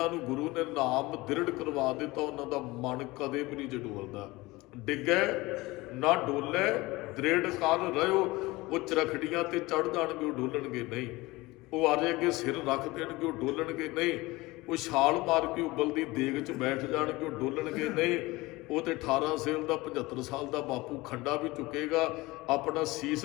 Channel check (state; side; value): quieter; right; 21.2 dB